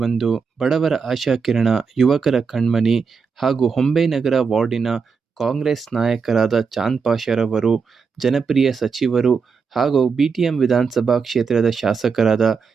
ಬಡವರ ಆಶಾಕಿರಣ, ಯುವಕರ ಕಣ್ಮನಿ ಹಾಗೂ ಹೊಂಬೆನಗರ ವಾರ್ಡಿನ ಕಾಂಗ್ರೆಸ್ ನಾಯಕರಾದ ಚಾಂದ್ ಪಾಷರವರು, ಜನಪ್ರಿಯ ಸಚಿವರು ಹಾಗೂ ಬಿಟಿಎಂ ವಿಧಾನಸಭಾ ಕ್ಷೇತ್ರದ ಶಾಸಕರಾದ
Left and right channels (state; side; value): quieter; left; 5.5 dB